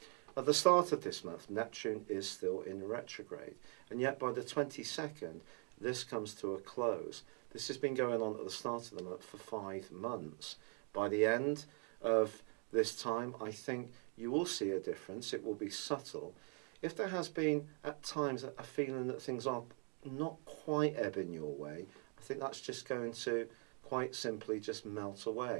At the start of this month, Neptune is still in retrograde, and yet by the 22nd, this comes to a close. This has been going on at the start of the month for 5 months. By the end of this time, I think you will see a difference. It will be subtle. If there has been at times a feeling that things are not quite ebbing your way, I think that's just going to quite simply just melt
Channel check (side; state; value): left; quieter; 36.4 dB